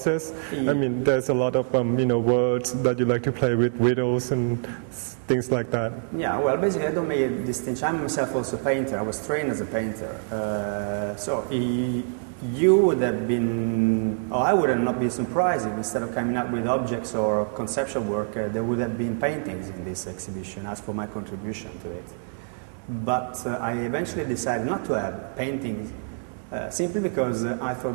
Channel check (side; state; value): left; silent; digital silence